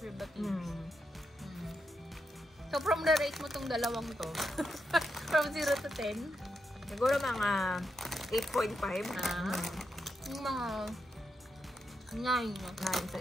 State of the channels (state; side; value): normal; both; correlation 0.84